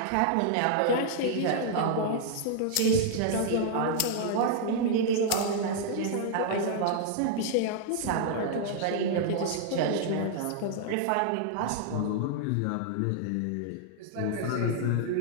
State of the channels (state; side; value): different; both; correlation -0.01